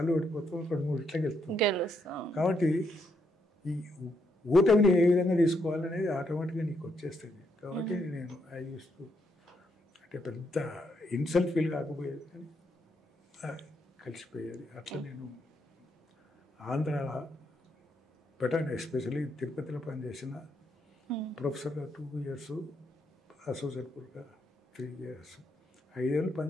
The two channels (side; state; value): both; normal; correlation 0.77